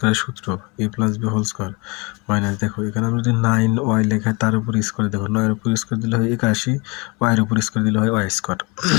সূত্র a plus b whole square minus, দেখো এখানে আমরা যদি 9y লেখা তার উপর স্কয়ার, দেখো 9 এর উপর স্কয়ার দিলে হয় 81, y এর উপর স্কয়ার দিলে হয় y স্কয়ার।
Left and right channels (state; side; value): quieter; right; 28.6 dB